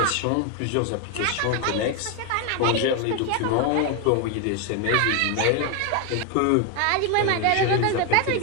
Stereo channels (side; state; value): both; different; correlation 0.01